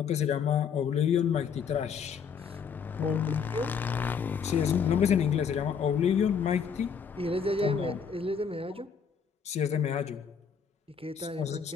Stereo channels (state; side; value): quieter; right; 6.7 dB